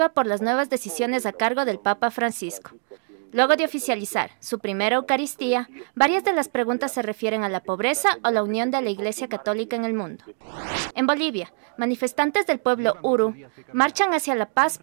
por las nuevas decisiones a cargo del Papa Francisco. Luego de oficializar su primera Eucaristía, varias de las preguntas se refieren a la pobreza o la unión de la Iglesia Católica en el mundo. En Bolivia, manifestantes del pueblo Uru marchan hacia la paz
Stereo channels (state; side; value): silent; left; 56 dB below the other